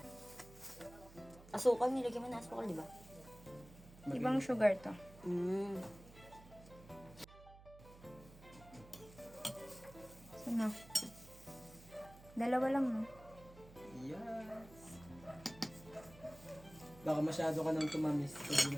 Asukal, nilagyan mo na asukal, di ba? Ibang sugar to. Mm. So, na. Dalawa lang, no? Yes. Baka masyado ka nang tumamis pag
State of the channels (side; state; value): right; noise; hum, 19 dB below the sound